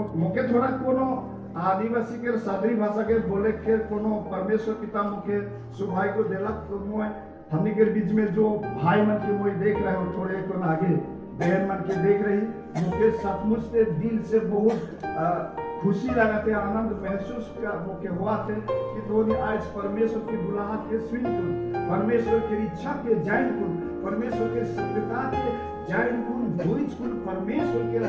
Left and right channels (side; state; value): both; identical; correlation 1.00